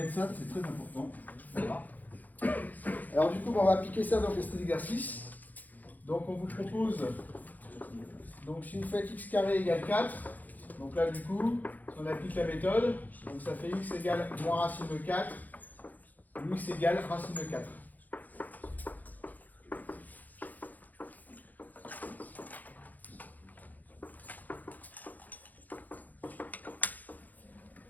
ça, c'est très important. Voilà. Alors du coup, on va appliquer ça dans cet exercice. Donc on vous propose, donc si vous faites x carré égale 4, donc là du coup, si on applique la méthode, donc ça fait x égale moins racine de 4, ou x égale racine de 4.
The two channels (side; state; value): right; late; 0.082 ms